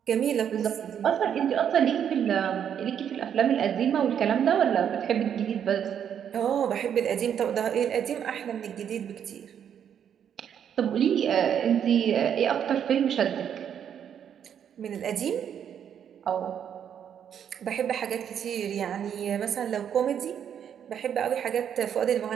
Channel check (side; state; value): left; quieter; 8.7 dB